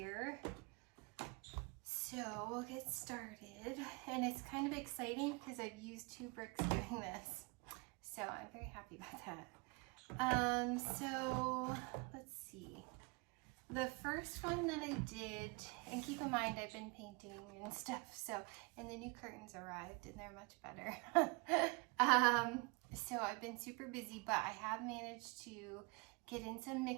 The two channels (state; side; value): quieter; left; 29.7 dB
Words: So we'll get started, and it's kind of exciting because I've used 2 bricks doing this, so I'm very happy about that. So let's see. The first one that I did, and keep in mind I've been painting and stuff, so, and the new curtains arrived and they're much better. So I've been super busy, but I have managed to get in some